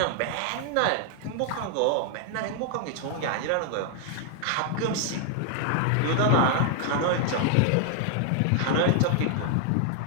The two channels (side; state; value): both; different; correlation 0.00